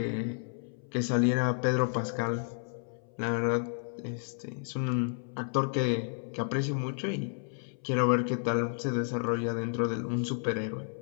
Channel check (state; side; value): silent; right; 57 dB below the other